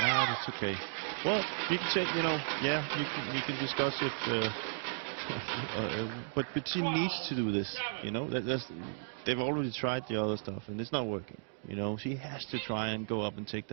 Ah, that's okay. Well, you can say, you know, yeah, you can discuss if, but she needs to do this. You know, they've already tried the other stuff and it's not working. You know, she has to try and go up and take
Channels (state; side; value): silent; left; digital silence